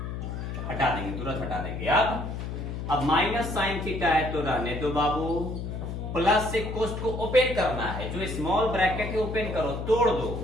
हटा देंगे, तुरंत हटा देंगे। अब माइनस साइन थीटा है तो रहने दो बाबू, प्लस से कोष्ट को ओपन करना है, जो स्मॉल ब्रैकेट है ओपन करो, तोड़ दो,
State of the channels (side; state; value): left; noise; hum, 5 dB below the sound